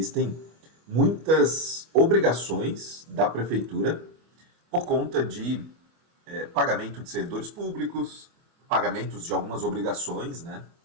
muitas obrigações da prefeitura por conta de pagamento de servidores públicos, pagamentos de algumas obrigações, né?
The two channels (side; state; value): left; late; 25 ms